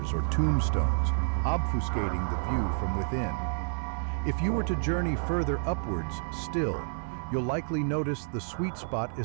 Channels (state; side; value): silent; left; digital silence